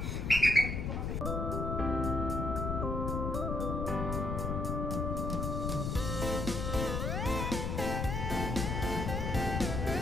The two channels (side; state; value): left; noise; rumble, 1 dB below the sound